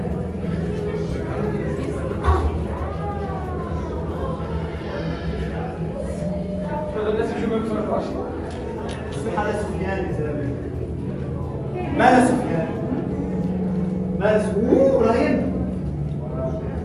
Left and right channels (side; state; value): both; identical; correlation 1.00